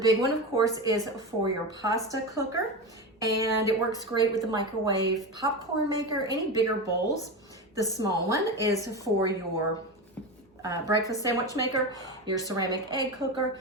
one, of course, is for your pasta cooker. And it works great with the microwave popcorn maker, any bigger bowls. The small one is for your breakfast sandwich maker, your ceramic egg cooker,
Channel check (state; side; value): normal; both; correlation 0.21